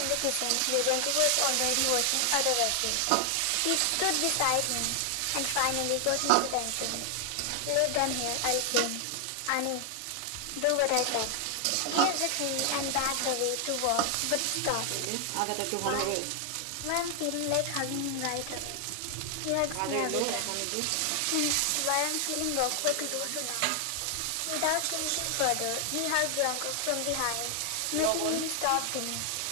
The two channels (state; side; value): different; both; correlation 0.00